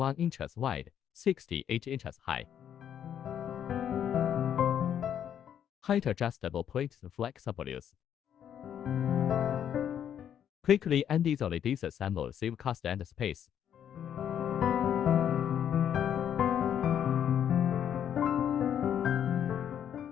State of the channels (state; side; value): quieter; right; 9.4 dB